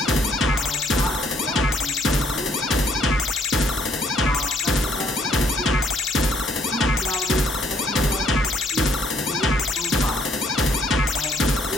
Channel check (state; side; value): normal; both; correlation 0.67